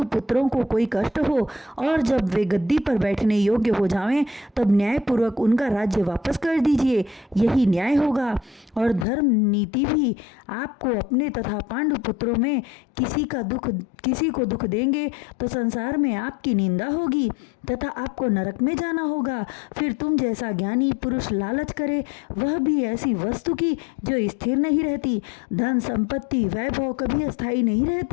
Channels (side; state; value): right; drops out; at 9.1 s